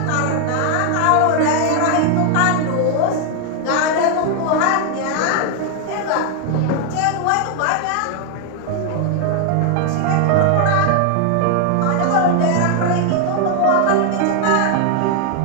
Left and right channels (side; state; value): both; different; correlation 0.00